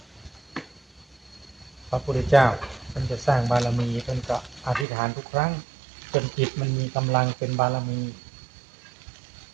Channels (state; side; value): drops out; left; at 4.9 s